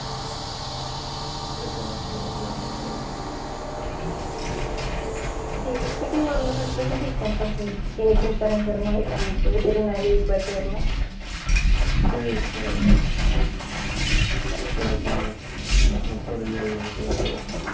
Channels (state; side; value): identical; both; correlation 1.00